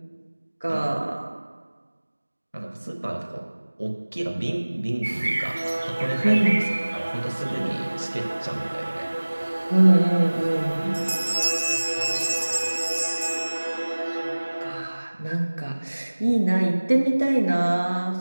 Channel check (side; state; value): both; inverted; correlation -1.00